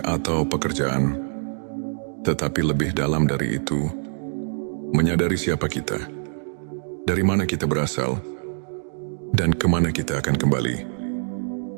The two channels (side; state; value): left; silent; digital silence